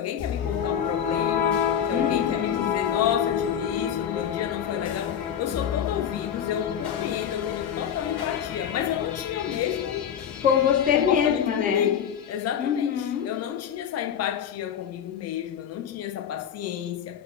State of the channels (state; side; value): quieter; right; 8.8 dB